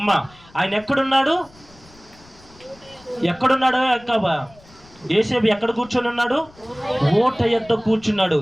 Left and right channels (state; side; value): noise; left; rumble, 26 dB below the sound